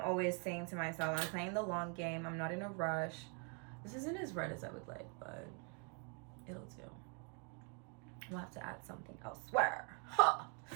saying to myself, I'm playing the long game. I'm not in a rush. This isn't as red as I would like, but it'll do. We'll have to add something elsewhere. Huh.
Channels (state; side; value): quieter; left; 38.1 dB